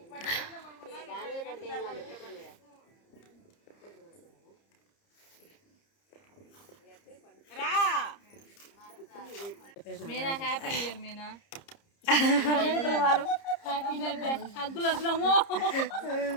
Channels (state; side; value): late; right; 30 ms